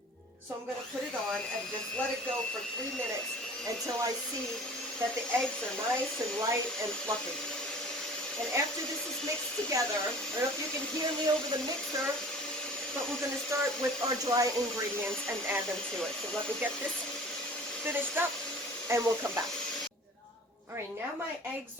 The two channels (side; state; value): both; normal; correlation 0.44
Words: So I'm going to put it on and just let it go for 3 minutes until I see that the eggs are nice and light and fluffy. And after this is mixed together, I don't know if you can hear me over the mixer, but we're going to start with our dry ingredients and add them to it. So let me get this finished up and we'll come back. All right, now my eggs